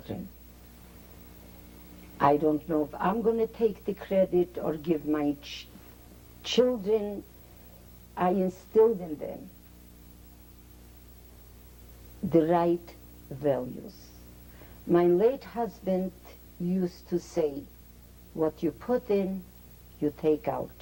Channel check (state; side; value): identical; both; correlation 1.00